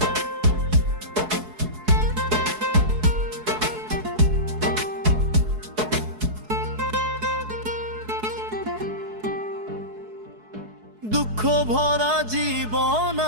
দুঃখ ভরা জীবন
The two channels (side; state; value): left; late; 4.7 ms